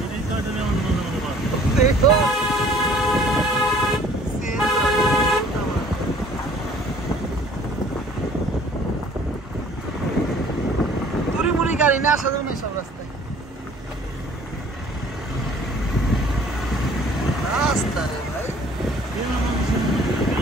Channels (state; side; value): normal; both; correlation 0.54